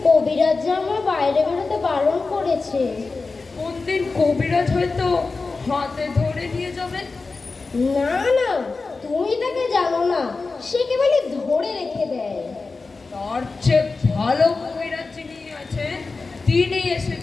কবিরাজ যে আমার বাইরে বেরোতে বারণ করেছে। কোন দিন কবিরাজ হয়তো হাতে ধরে নিয়ে যাবে। না না, তুমি তাকে জানো না, সে কেবলই ধরে রেখে দেয়। তার চেয়ে ভালো কবিরাজ যিনি আছে তিনি এসে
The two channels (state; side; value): quieter; right; 4.0 dB